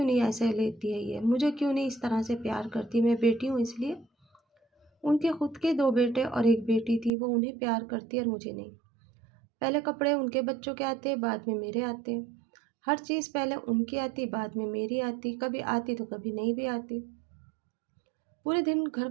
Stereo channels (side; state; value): left; drops out; at 7.1 s